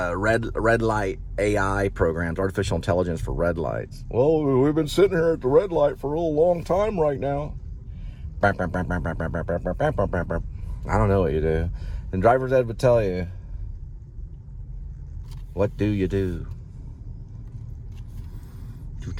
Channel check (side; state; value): both; identical; correlation 1.00